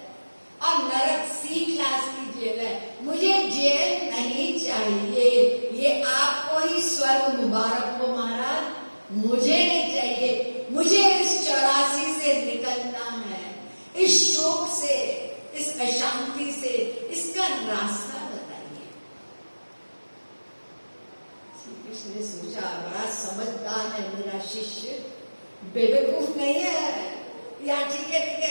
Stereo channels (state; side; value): inverted; both; correlation -1.00